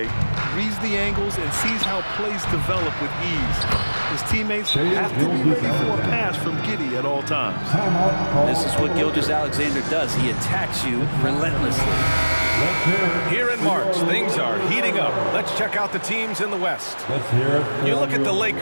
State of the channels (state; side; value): inverted; both; correlation -1.00